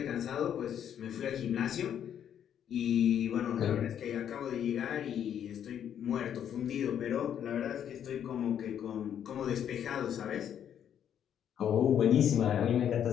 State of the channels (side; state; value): right; quieter; 9.3 dB